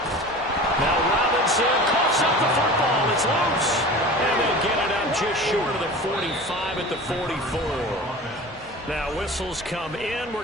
Now Robinson coughs up the football. It's loose. And they get it out just short of the 45 at the 44. Now whistles come in.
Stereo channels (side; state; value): both; normal; correlation 0.37